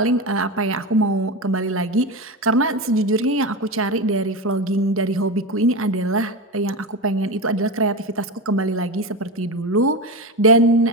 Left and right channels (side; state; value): both; normal; correlation 0.20